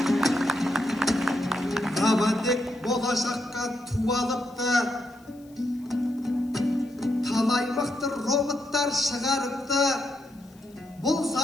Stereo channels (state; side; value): noise; left; hiss, 29 dB below the sound